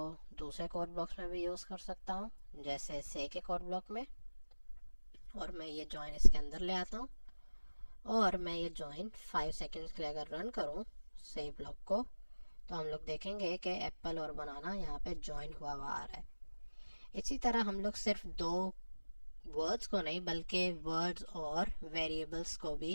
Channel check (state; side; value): inverted; both; correlation -1.00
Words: दूसरे कोड ब्लॉक्स में भी यूज़ कर सकता हूँ, जैसे से के कोड ब्लॉक में। और मैं ये जॉइन इसके अंदर ले आता हूँ और मैं ये जॉइन 5 सेकंड्स के लिए अगर रन करूँ से ब्लॉक को, तो हम लोग देखेंगे कि एप्पल और बनाना यहाँ पे जॉइन हुआ हुआ आ रहा है। इसी तरह हम लोग सिर्फ दो वर्ड्स को नहीं बल्कि वर्ड्स और वेरिएबल्स को